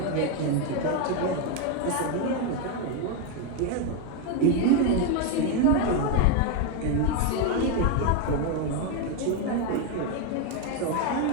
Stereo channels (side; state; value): both; different; correlation 0.02